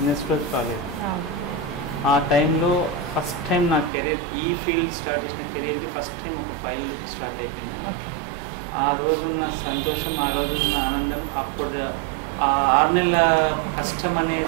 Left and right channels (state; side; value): drops out; left; at 3.9 s